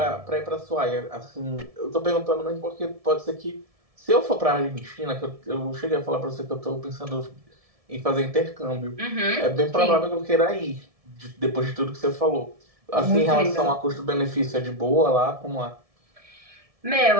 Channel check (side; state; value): left; late; 1.7 ms